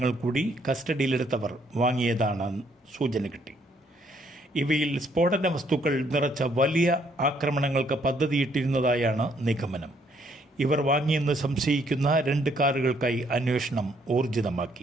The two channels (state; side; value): normal; both; correlation 0.68